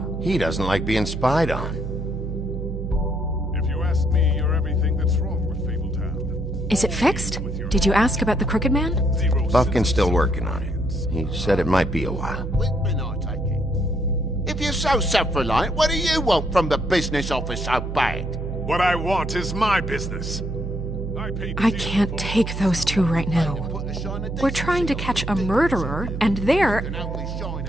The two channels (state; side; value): noise; right; hum, 5 dB below the sound